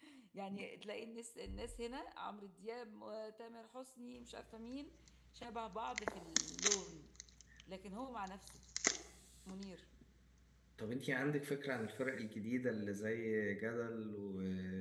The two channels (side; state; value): both; identical; correlation 1.00